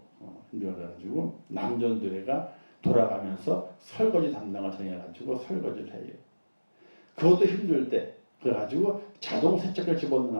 그래가지고 남전도회가 돌아가면서 설거지 담당을 정해가지고 설거지를 해요. 그것도 힘들 때 그래가지고 자동 세척기를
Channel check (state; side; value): inverted; both; correlation -1.00